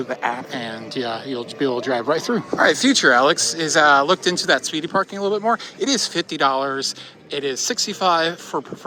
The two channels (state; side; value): identical; both; correlation 1.00